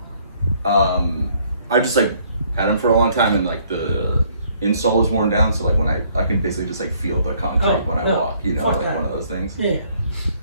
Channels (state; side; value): inverted; both; correlation -0.64